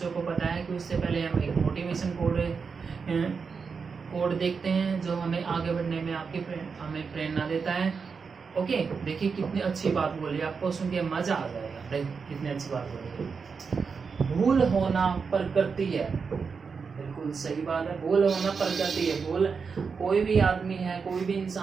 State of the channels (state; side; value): quieter; left; 5.5 dB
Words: को पता है कि उससे पहले हम एक मोटिवेशन कोड देखते हैं जो हमें आगे बढ़ने में हमें प्रेरणा देता है। ओके, देखिए कितनी अच्छी बात बोली, आपको सुन के मजा आ जाएगा। कितनी अच्छी बात बोली। भूल होना प्रकृति है। बिल्कुल सही बात है, भूल होना प्रकृति है। भूल कोई भी आदमी है, कोई भी